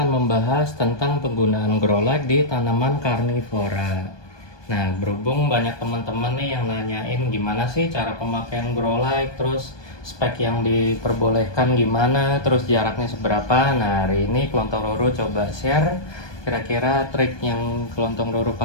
membahas tentang penggunaan grow light di tanaman karnivora. Nah, berhubung banyak teman-teman nih yang nanyain gimana sih cara pemakaian grow light, terus spek yang diperbolehkan gimana, terus jaraknya seberapa. Nah, hari ini kelontong ruru coba share kira-kira trik yang kelontong ruru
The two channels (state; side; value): late; right; 1.2 ms